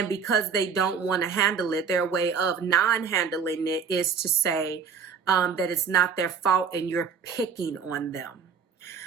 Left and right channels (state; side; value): quieter; left; 6.3 dB